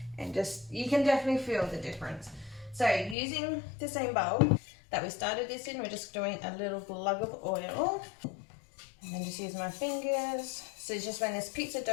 and just, you can definitely feel the difference. So using the same bowl that we started this in, we're just doing a little glug of oil. And then just use my fingers. So just when this pizza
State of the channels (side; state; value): right; drops out; at 3.2 s